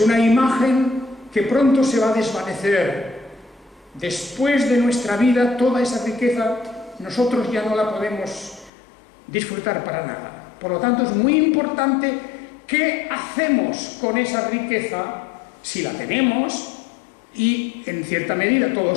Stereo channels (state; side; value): drops out; right; at 8.7 s